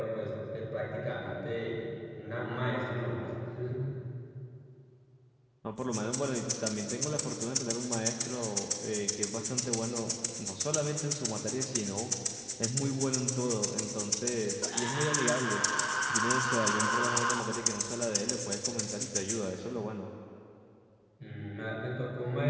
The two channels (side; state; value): both; identical; correlation 1.00